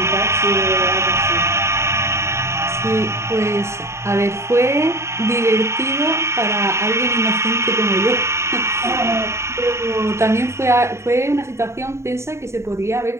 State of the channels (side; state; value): left; late; 0.13 ms